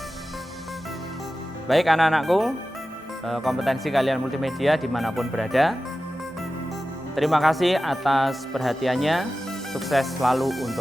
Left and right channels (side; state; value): both; normal; correlation 0.94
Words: Baik anak-anakku, kompetensi kalian multimedia dimanapun berada, terima kasih atas perhatiannya. Sukses selalu